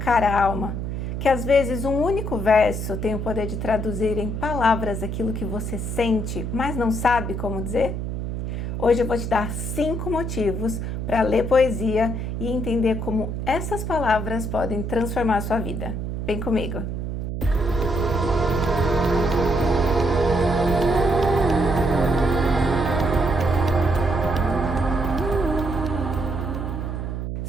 a alma? Que às vezes um único verso tem o poder de traduzir em palavras aquilo que você sente, mas não sabe como dizer? Hoje eu vou te dar 5 motivos para ler poesia e entender como essas palavras podem transformar a sua vida. Vem comigo!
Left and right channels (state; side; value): noise; right; hum, 4 dB below the sound